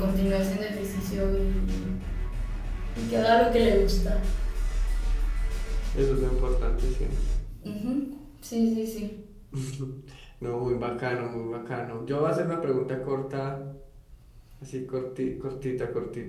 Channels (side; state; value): both; identical; correlation 1.00